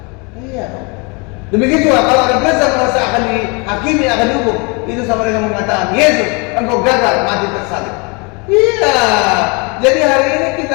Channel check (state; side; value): quieter; right; 30.8 dB